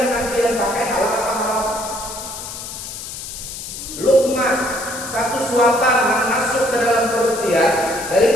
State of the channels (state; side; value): noise; left; hiss, 9 dB below the sound